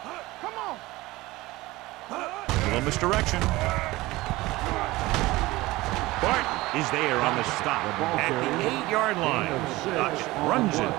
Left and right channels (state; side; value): quieter; left; 19.5 dB